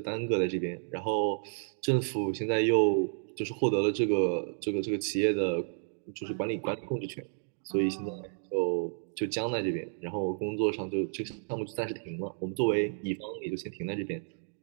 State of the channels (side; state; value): left; silent; digital silence